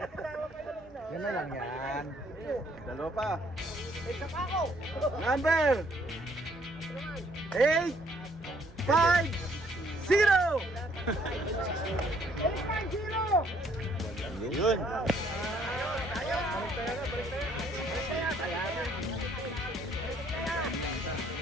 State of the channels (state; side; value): normal; both; correlation 0.65